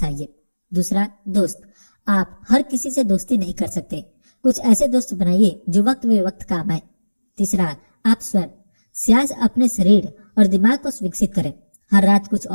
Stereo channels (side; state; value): both; inverted; correlation -1.00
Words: दूसरा, दोस्त। आप हर किसी से दोस्ती नहीं कर सकते। कुछ ऐसे दोस्त बनाइए जो वक्त बे वक्त काम आए। तीसरा, आप स्वयं। सियाज अपने शरीर और दिमाग को विकसित करें। हर रात कुछ